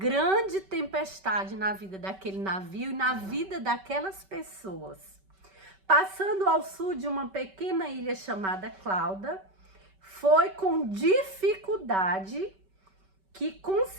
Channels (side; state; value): left; late; 5.2 ms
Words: tempestade na vida daquele navio e na vida daquelas pessoas. Passando ao sul de uma pequena ilha chamada Clauda, foi com dificuldade que